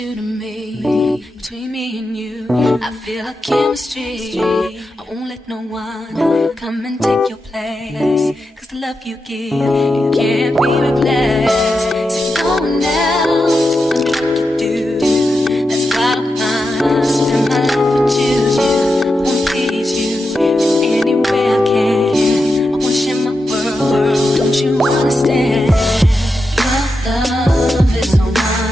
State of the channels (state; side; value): normal; both; correlation 0.88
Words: to me. Between me and you, I feel like chemistry. I won't let no one come and take your place. Cause the love you give, it can't be replaced. So no one else tell me what to do. That's why I spend my life with you. I wanna please you in any way I can. I wanna share my world, don't you understand? Your love is a